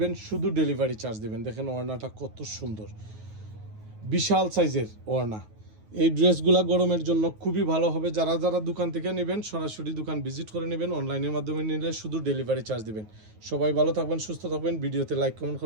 শুধু ডেলিভারি চার্জ দেবেন। দেখেন ওড়নাটা কত সুন্দর, বিশাল সাইজের ওড়না। এই ড্রেসগুলো গরমের জন্য খুবই ভালো হবে। যারা যারা দোকান থেকে নেবেন সরাসরি দোকান ভিজিট করে নেবেন, অনলাইনের মাধ্যমে নিলে শুধু ডেলিভারি চার্জ দেবেন। সবাই ভালো থাকবেন, সুস্থ থাকবেন। ভিডিওতে লাইক কমেন্ট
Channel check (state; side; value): late; left; 9.4 ms